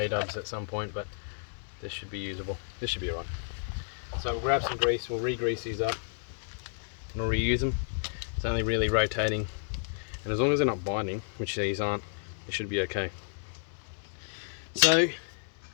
at some point, but this should be usable. This should be alright. So we'll grab some grease, we'll re-grease these up, and we'll reuse them. It's only really rotating, and as long as they're not binding, which these aren't, it should be okay. So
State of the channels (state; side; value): silent; right; digital silence